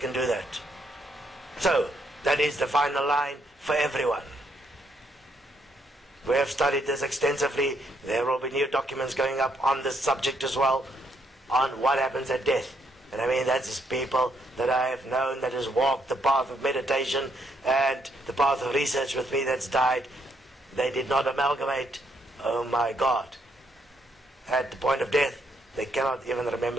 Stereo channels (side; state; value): both; normal; correlation 0.73